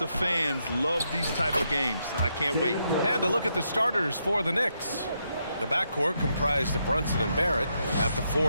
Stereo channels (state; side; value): inverted; both; correlation -0.80